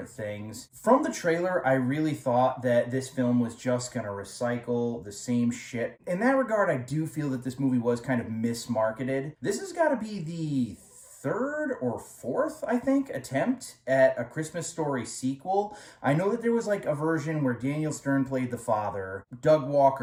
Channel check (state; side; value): identical; both; correlation 1.00